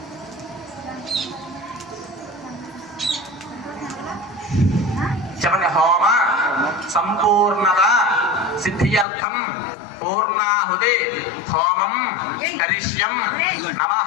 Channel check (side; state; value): right; drops out; at 9.1 s